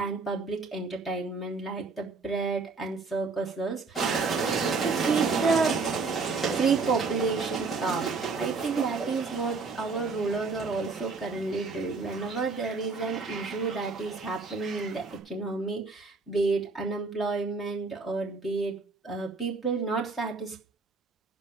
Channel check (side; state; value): left; quieter; 4.2 dB